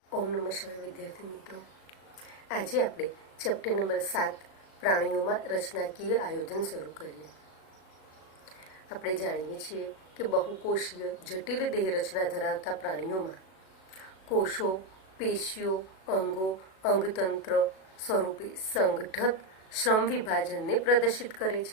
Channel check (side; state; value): right; late; 37 ms